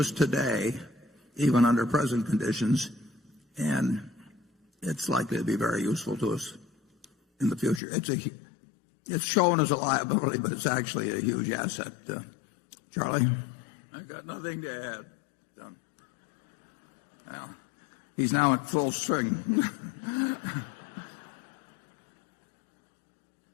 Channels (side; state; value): right; drops out; at 7.8 s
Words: today, even under present conditions, and it's likely to be very useful to us in the future. It's shown as a liability, but it's actually a huge asset. Charlie? I've got nothing to add. Well, he's now at full swing.